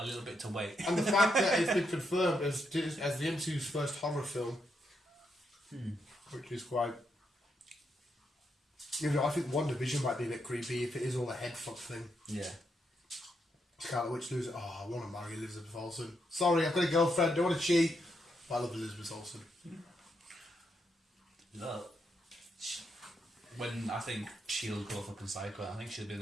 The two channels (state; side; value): normal; both; correlation 0.80